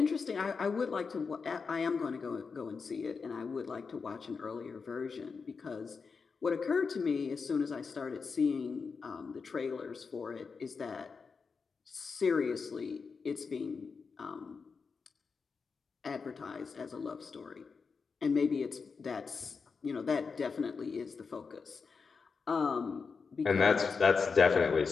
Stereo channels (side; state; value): right; quieter; 5.1 dB